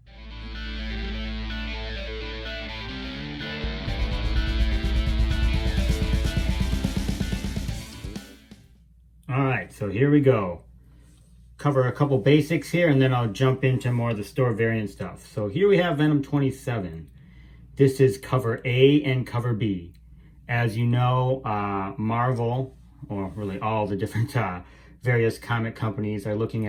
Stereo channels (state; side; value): identical; both; correlation 1.00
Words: Alright, so here we go. Cover a couple basics here and then I'll jump into more of the store variant stuff. So here we have Venom 27. This is cover A and cover B. As you know, Marvel, or really all the different various comic companies are looking